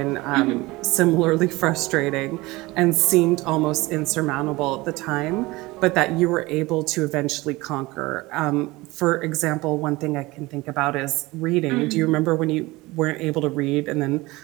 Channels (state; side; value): quieter; left; 21.2 dB